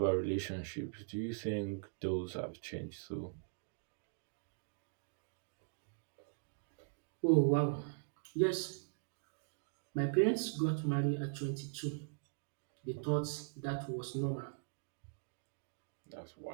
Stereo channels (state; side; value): silent; left; digital silence